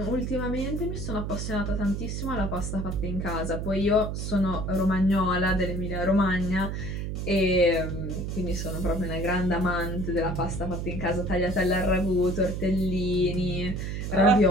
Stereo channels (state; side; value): noise; right; hum, 4 dB below the sound